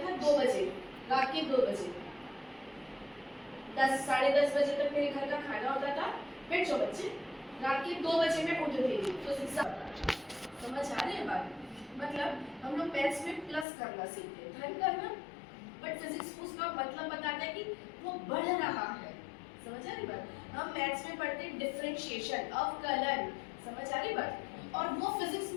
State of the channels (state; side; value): drops out; right; at 13.7 s